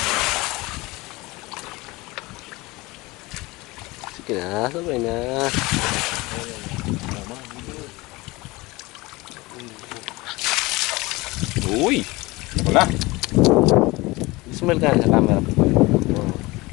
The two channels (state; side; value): quieter; right; 22.2 dB